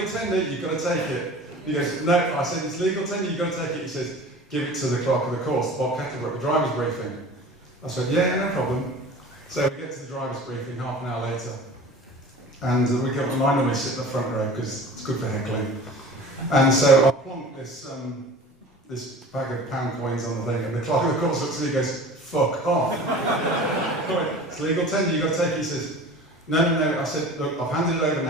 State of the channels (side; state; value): both; normal; correlation 0.40